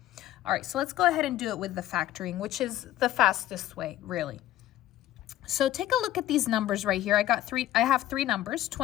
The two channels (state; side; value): quieter; right; 13.8 dB